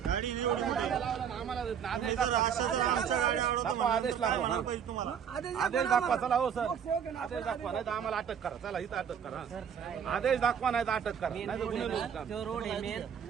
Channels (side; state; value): left; quieter; 8.0 dB